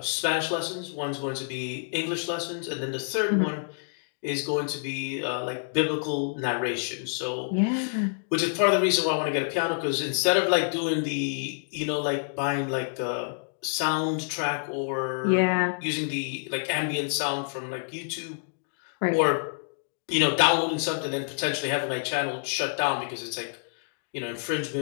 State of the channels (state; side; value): silent; right; digital silence